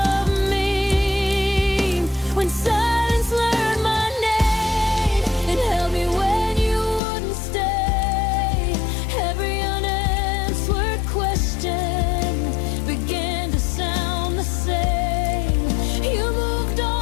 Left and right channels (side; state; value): right; drops out; at 7.0 s